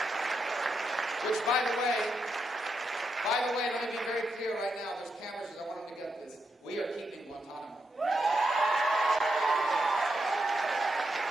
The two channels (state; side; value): normal; both; correlation 0.83